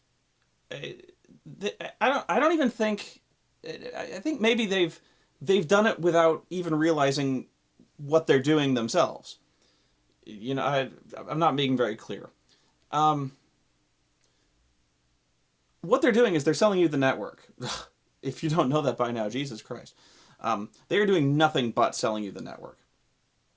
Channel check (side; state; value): both; identical; correlation 1.00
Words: don't even think. I think maybe they've done it without even realizing what they're doing themselves. You know, I'm not being very clear. What they're doing is they're selling you the network. If you don't know that by now, Jesus Christ. They are doing nothing but selling you the network.